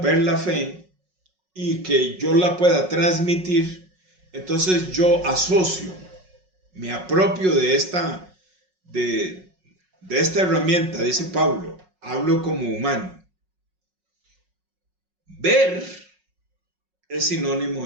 la fe y que yo la pueda transmitir, entonces yo asocio, me apropio de de esta herramienta, dice Pablo, hablo como humano. Ver es sinónimo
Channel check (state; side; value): late; left; 5.4 ms